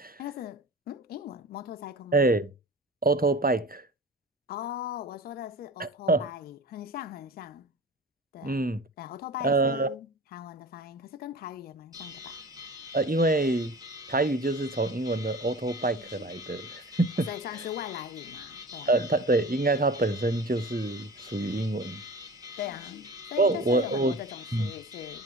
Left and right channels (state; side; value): normal; both; correlation 0.38